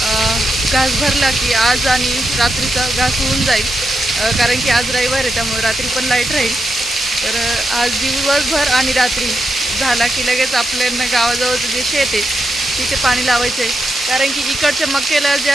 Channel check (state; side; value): normal; both; correlation 0.85